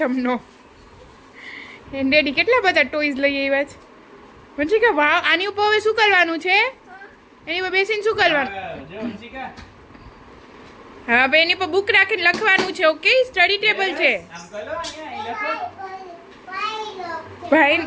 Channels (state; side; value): identical; both; correlation 1.00